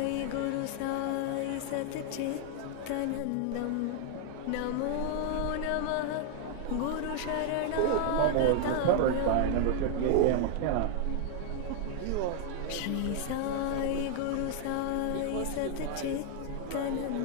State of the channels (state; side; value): different; both; correlation 0.00